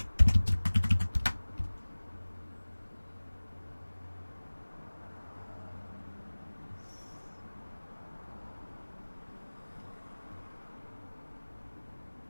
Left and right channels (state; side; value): inverted; both; correlation -1.00